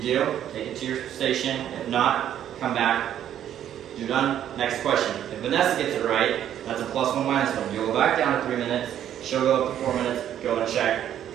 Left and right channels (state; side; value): quieter; left; 10.6 dB